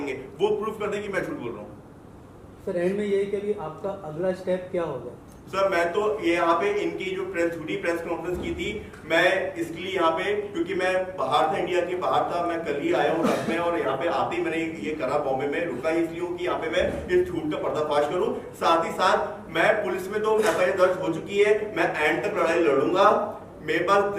है, वो प्रूफ कर दे कि मैं झूठ बोल रहा हूँ। सर एंड में यही कि अभी आपका अगला स्टेप क्या होगा? सर मैं तो ये यहाँ पे इनकी जो झूठी प्रेस कॉन्फ्रेंस की थी, मैं इसलिए यहाँ पे, क्योंकि मैं बाहर था, इंडिया के बाहर था, मैं कल ही आया हूँ रात में, और यहाँ पे आते ही मैंने ये करा, बॉम्बे में रुका ही इसलिए हूँ कि यहाँ पे मैं इस झूठ का पर्दाफाश करूँ। साथ ही साथ मैं पुलिस में तो एफआईआर दर्ज हो चुकी है, मैं एंड तक लड़ाई लड़ूंगा। मेरे पास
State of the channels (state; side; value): identical; both; correlation 1.00